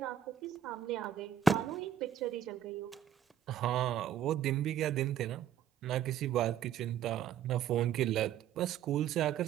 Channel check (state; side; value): quieter; left; 9.2 dB